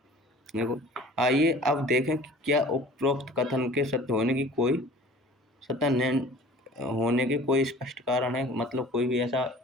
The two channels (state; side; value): normal; both; correlation 0.46